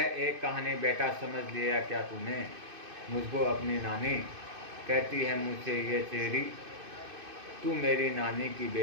एक कहानी, बेटा समझ लिया क्या तूने, मुझको अपनी नानी कहती है मुझसे ये चेरी, तू मेरी नानी की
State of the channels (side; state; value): left; late; 2.6 ms